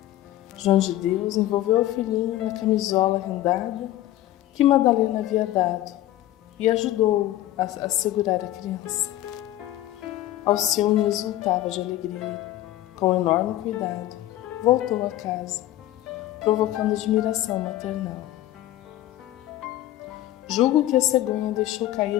João de Deus envolveu o filhinho na camisola rendada que Madalena havia dado, e ajudou-o a segurar a criança. Alcione exultava de alegria. Com enorme cuidado, voltou a casa, provocando admiração maternal. Julgo que a cegonha deixou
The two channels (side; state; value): right; quieter; 14.3 dB